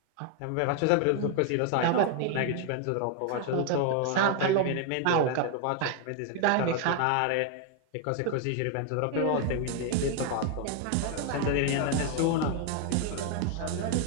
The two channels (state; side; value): different; both; correlation 0.00